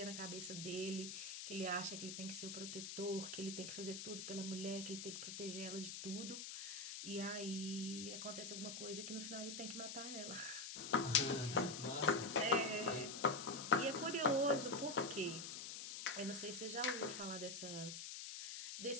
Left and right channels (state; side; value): noise; left; hiss, 6 dB below the sound